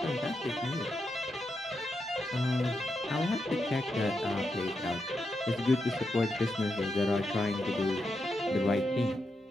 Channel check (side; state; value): both; normal; correlation 0.85